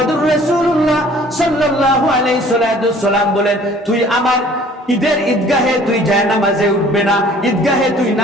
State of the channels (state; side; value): normal; both; correlation 0.53